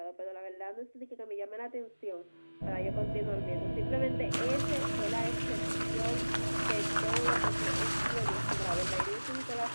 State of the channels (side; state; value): both; inverted; correlation -1.00